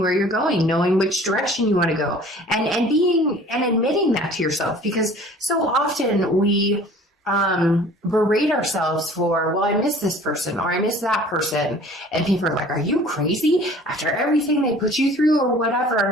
where you're going, knowing which direction you want to go, and admitting that to yourself, because so often we berate ourselves for, well, I miss this person or I miss that person. And people are like, are you crazy after everything they put you through or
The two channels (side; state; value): both; normal; correlation 0.49